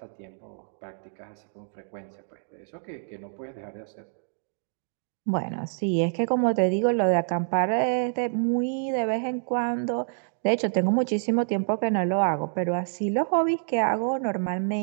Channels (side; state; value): left; silent; digital silence